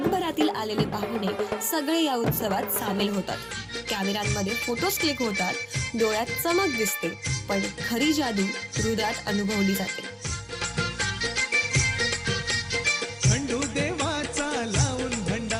आलेले पाहुणे सगळे या उत्सवात सामील होतात. कॅमेऱ्यांमध्ये फोटोज क्लिक होतात, डोळ्यात चमक दिसते, पण खरी जादू हृदयात अनुभवली जाते.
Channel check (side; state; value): both; identical; correlation 1.00